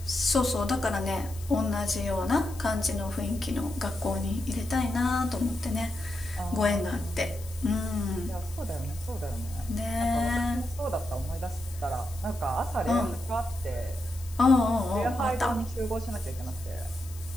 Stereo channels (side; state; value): left; noise; hiss, 18 dB below the sound